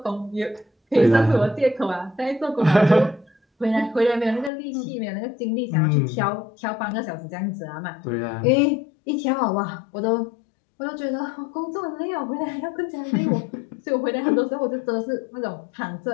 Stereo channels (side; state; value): right; drops out; at 4.5 s